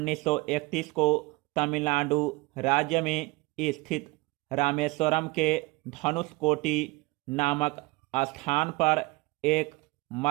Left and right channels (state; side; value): quieter; left; 23.5 dB